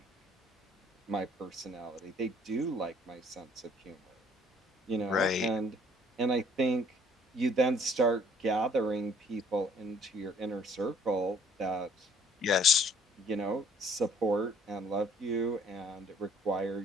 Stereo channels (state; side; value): normal; both; correlation 0.59